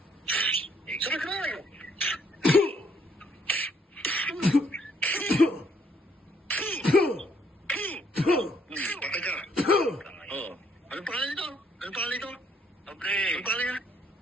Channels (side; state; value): both; normal; correlation 0.68